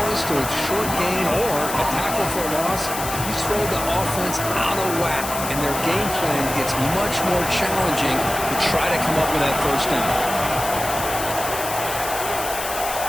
to a short gain or a tackle for a loss, you throw the offense out of whack, and their game plan gets much more challenging to try to come up with that first down.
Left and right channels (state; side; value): noise; left; hiss, 7 dB below the sound